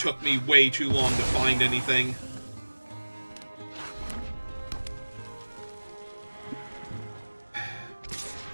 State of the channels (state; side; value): inverted; both; correlation -1.00